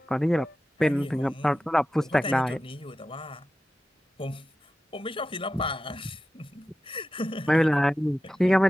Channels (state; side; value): normal; both; correlation 0.93